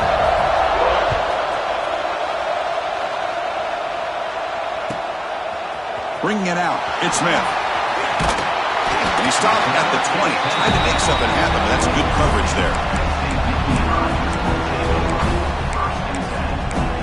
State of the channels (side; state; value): both; identical; correlation 1.00